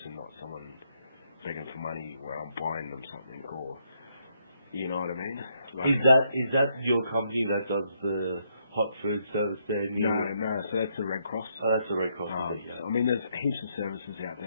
not someone begging for money where I'm buying them something, or you know what I mean. Like, is that your company that does the hot food service there? No. So that's the Red Cross. Oh, that's the Red Cross. Yeah. I mean, there's heaps of services out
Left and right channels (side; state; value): both; inverted; correlation -0.74